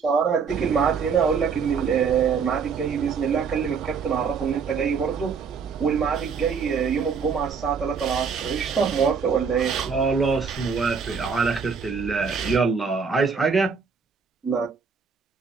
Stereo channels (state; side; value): quieter; left; 5.8 dB